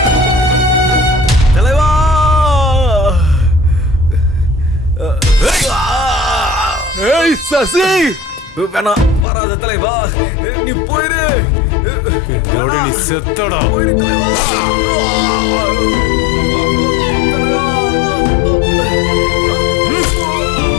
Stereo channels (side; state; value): right; drops out; at 9.2 s